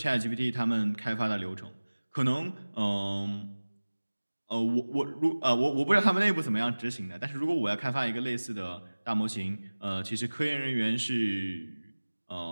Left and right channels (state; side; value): inverted; both; correlation -1.00